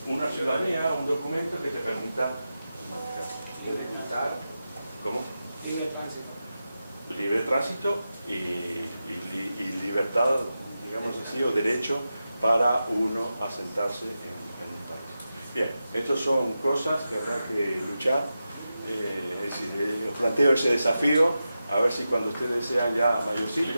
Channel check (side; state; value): both; inverted; correlation -0.91